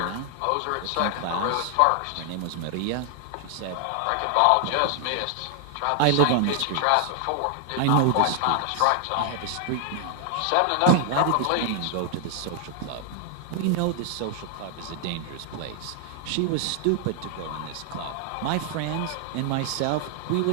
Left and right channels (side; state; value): both; different; correlation 0.00